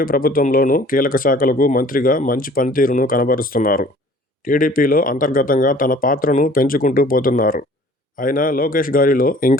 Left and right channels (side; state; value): both; normal; correlation 0.51